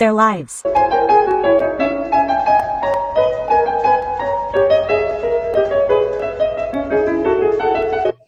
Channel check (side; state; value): both; identical; correlation 1.00